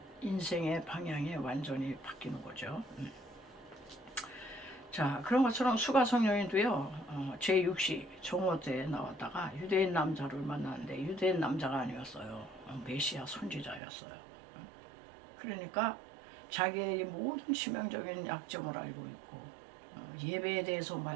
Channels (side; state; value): left; drops out; at 13.8 s